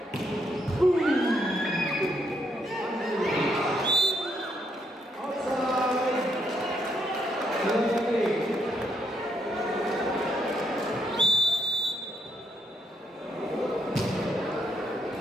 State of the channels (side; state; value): both; normal; correlation 0.75